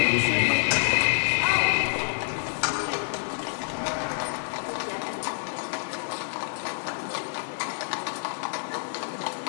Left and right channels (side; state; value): right; silent; digital silence